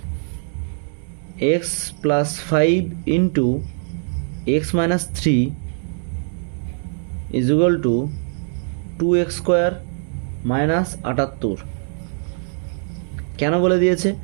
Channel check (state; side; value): silent; left; digital silence